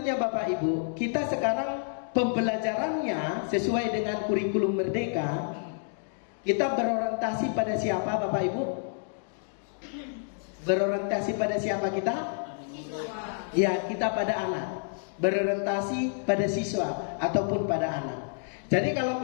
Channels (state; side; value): silent; right; digital silence